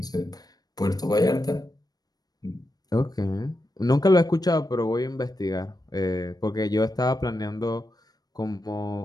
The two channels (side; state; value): right; late; 0.19 ms